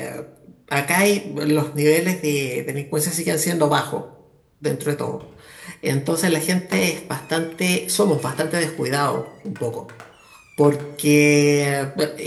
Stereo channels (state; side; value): identical; both; correlation 1.00